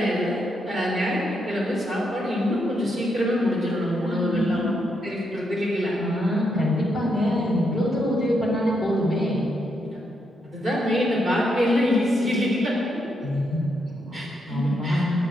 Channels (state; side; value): normal; both; correlation 0.80